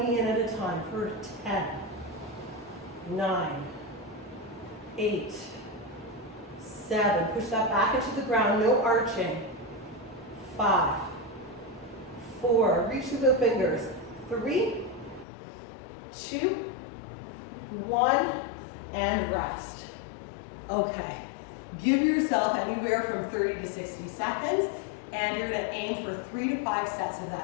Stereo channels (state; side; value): drops out; right; at 15.2 s